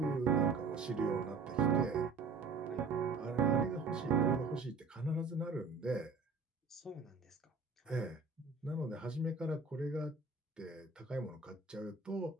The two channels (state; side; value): quieter; left; 4.4 dB